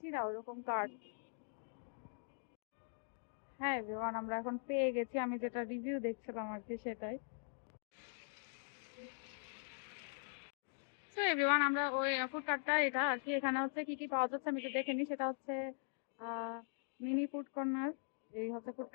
না ওরকম কার্ড। হ্যাঁ এভরিওয়ান, আমরা এখন পেয়ে গেছি, আমি যেটা রিভিউ দেখছিলাম আর কি সেটাই। তো এভরিওয়ান, আমরা ওই ফুড কার্টটা এটা আর কি, এখানে হচ্ছে কি কি পাওয়া যাচ্ছে আমি তো দেখে নিই। সেটা হচ্ছে মিনি ফুড কর্নার, এই হচ্ছে ফুড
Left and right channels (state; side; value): silent; right; digital silence